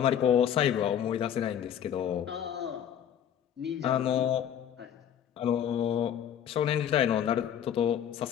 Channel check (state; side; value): quieter; right; 9.4 dB